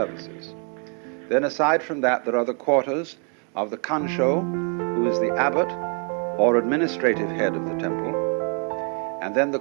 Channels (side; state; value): left; quieter; 39.0 dB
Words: Then aside from that, there are the quarters of the Kansho, who is the abbot or administrative head of the temple, and then the